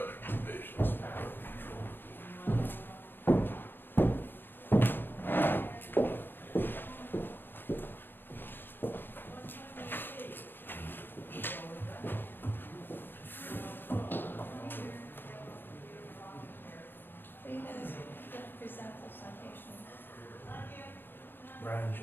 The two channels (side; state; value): right; late; 0.098 ms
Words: revisions. Are you gonna present the citations? Brian